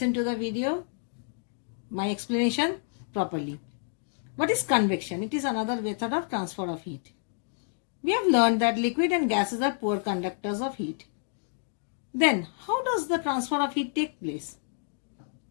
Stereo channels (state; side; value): silent; right; digital silence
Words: to the video, my explanation properly. What is convection? It is another method of transfer of heat. We have learned that liquid and gases are poor conductors of heat. Then, how does the transfer of heat take place?